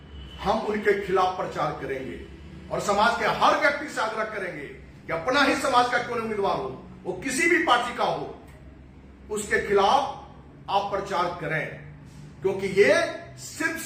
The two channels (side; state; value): both; identical; correlation 1.00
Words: हम उनके खिलाफ प्रचार करेंगे और समाज के हर व्यक्ति से आग्रह करेंगे कि अपना ही समाज का क्यों नहीं उम्मीदवार हो, वो किसी भी पार्टी का हो, उसके खिलाफ आप प्रचार करें, क्योंकि ये सिर्फ